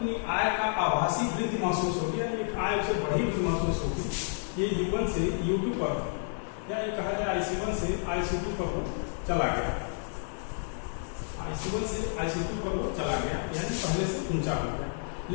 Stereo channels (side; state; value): right; silent; digital silence